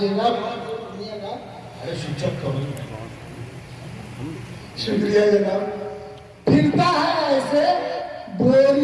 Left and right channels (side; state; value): both; identical; correlation 1.00